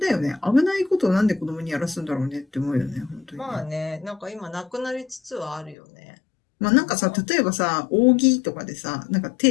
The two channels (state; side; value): drops out; right; at 5.8 s